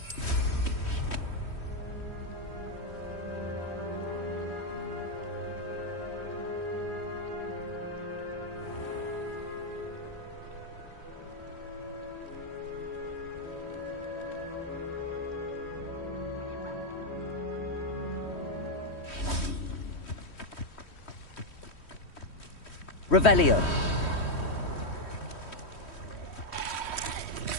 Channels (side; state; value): right; late; 3.1 ms